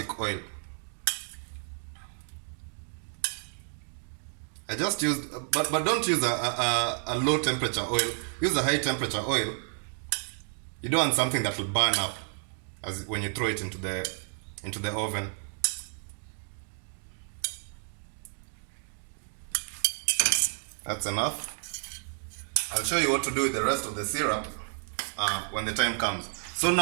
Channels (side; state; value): left; silent; 57 dB below the other